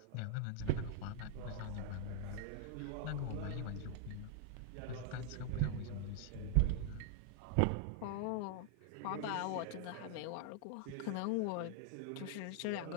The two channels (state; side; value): different; both; correlation 0.00